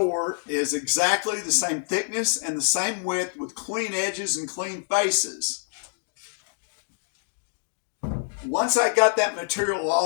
is exactly the same thickness and the same width with clean edges and clean faces. Once I got that material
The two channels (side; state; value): right; silent; digital silence